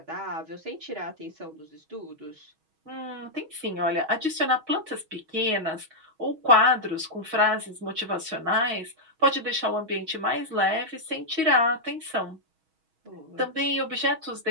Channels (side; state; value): left; late; 6.3 ms